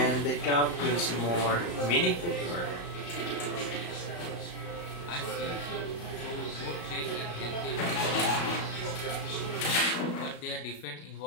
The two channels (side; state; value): right; late; 34 ms